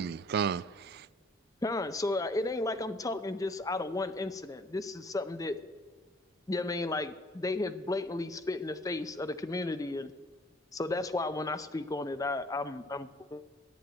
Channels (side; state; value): both; normal; correlation 0.55